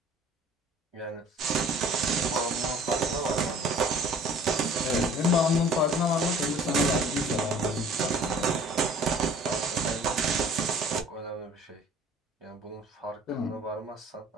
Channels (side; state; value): both; normal; correlation 0.50